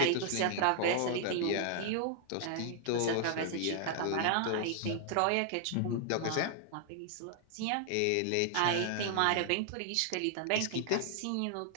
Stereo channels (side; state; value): both; different; correlation 0.00